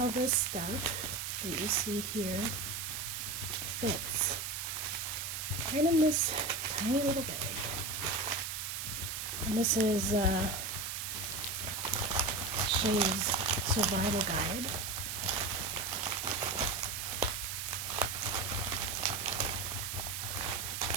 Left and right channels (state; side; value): noise; right; hiss, 4 dB below the sound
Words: this stuff that you see here fits right in this tiny little bag. And this is SHEAS survival guide.